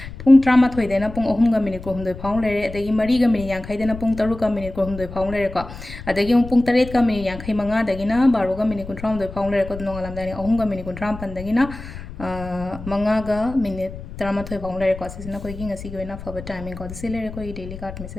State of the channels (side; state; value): left; noise; rumble, 12 dB below the sound